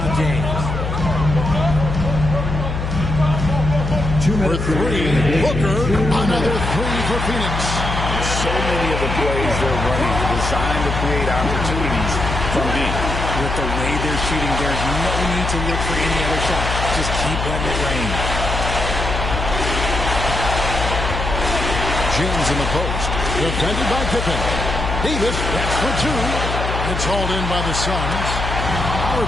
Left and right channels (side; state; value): left; noise; hum, 3 dB below the sound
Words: James. For 3, Booker, another 3 for Phoenix. So many of the plays they're running are designed to create opportunities from deep. With the way they're shooting, there's no need to look for any other shot. Just keep letting it rain. James in the post. Defended by Pippen. Davis, that's for 2. It's hauled in by the Suns.